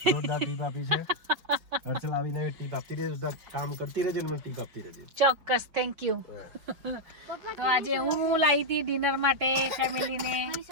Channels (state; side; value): late; left; 5.3 ms